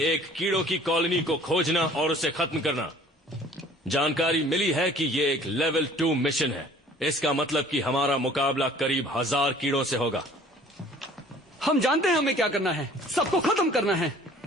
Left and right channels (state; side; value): normal; both; correlation 0.52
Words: एक कीड़ों की कॉलोनी को खोजना और उसे खत्म करना। जानकारी मिली है कि ये एक लेवल 2 मिशन है। इसका मतलब कि हमारा मुकाबला करीब 1000 कीड़ों से होगा। हम जानते हैं हमें क्या करना है, सबको खत्म करना है।